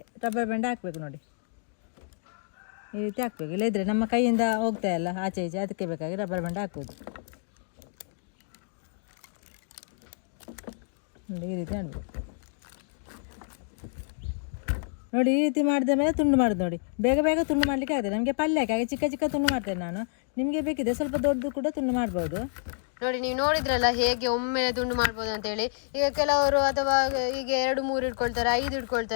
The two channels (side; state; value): right; silent; digital silence